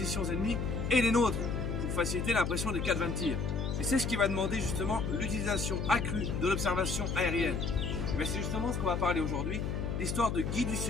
ennemies et les nôtres pour faciliter l'impression des cadres de tir. Et c'est ce qui va demander justement l'utilisation accrue de l'observation aérienne. Mais c'est justement ce qu'on va parler aujourd'hui, l'histoire de Guy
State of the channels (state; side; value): noise; left; hum, 1 dB below the sound